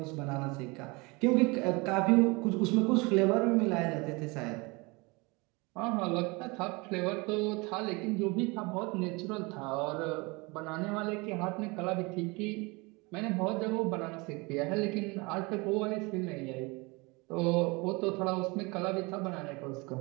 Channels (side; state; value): left; quieter; 26.5 dB